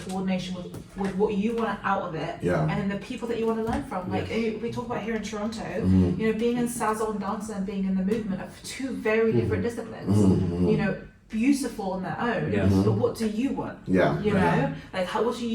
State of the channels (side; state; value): both; identical; correlation 1.00